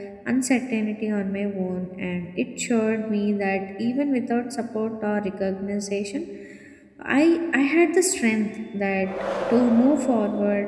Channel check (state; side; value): identical; both; correlation 1.00